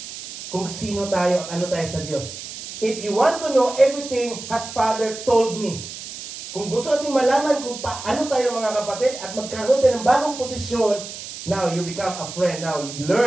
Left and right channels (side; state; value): right; noise; hiss, 11 dB below the sound